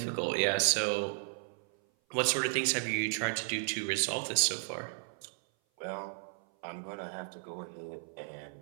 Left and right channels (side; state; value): left; silent; 55 dB below the other